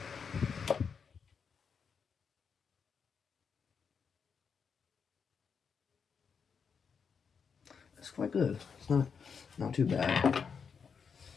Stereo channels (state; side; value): quieter; right; 6.2 dB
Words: It's quite good. It's not too bad.